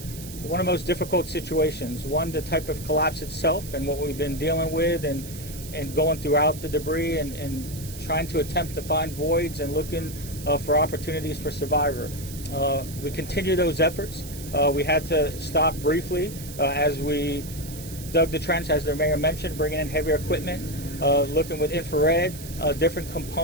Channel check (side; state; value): right; noise; hiss, 14 dB below the sound